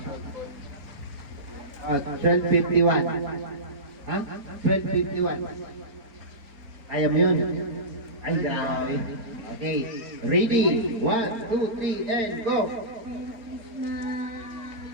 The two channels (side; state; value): left; late; 4.0 ms